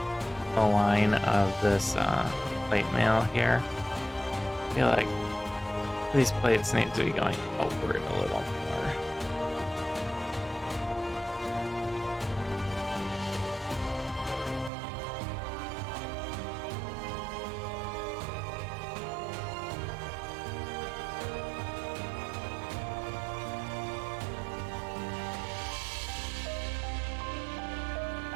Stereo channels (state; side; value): drops out; left; at 14.7 s